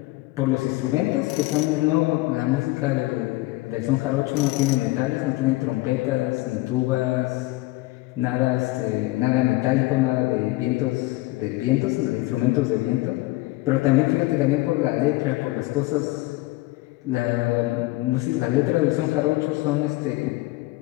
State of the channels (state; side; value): quieter; right; 20.3 dB